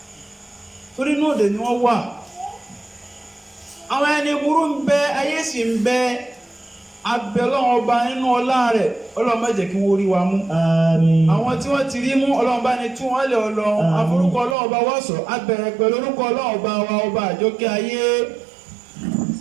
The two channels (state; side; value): drops out; left; at 14.6 s